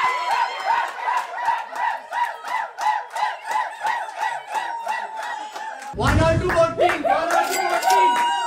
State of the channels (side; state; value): both; identical; correlation 1.00